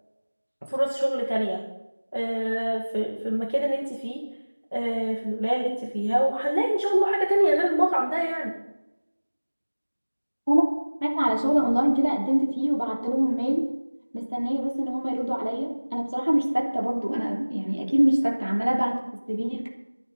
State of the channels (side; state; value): both; inverted; correlation -1.00